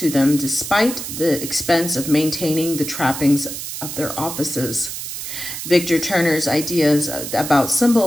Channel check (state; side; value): noise; right; hiss, 7 dB below the sound